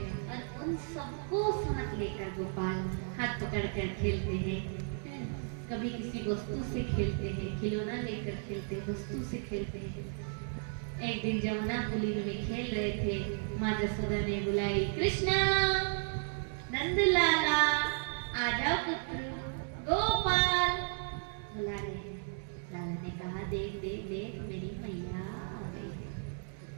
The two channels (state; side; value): silent; left; 55 dB below the other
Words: और उन सबको साथ लेकर गोपाल हाथ पकड़कर खेलते हैं। कभी किसी वस्तु से खेलते हैं, खिलौना लेकर खेलते हैं, वस्तु से खेलते हैं। एक दिन जमुना पुली में खेल रहे थे, माँ जसोदा ने बुलाई, कृष्णा, नंदलाला, आ जाओ पुत्र, गोपाल बुला रहे हैं। लाला ने कहा, देख देख देख मेरी मैया आ गई है।